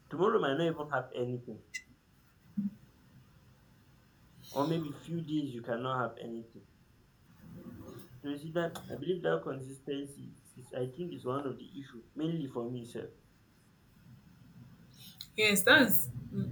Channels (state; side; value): identical; both; correlation 1.00